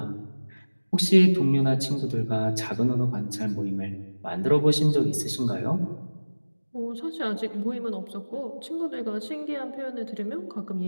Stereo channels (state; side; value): inverted; both; correlation -1.00